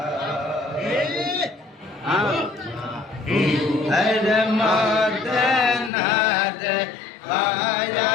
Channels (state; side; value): drops out; right; at 5.9 s